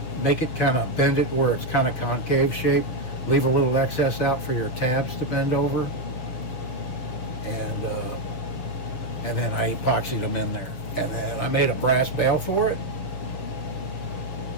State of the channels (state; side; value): late; right; 6.4 ms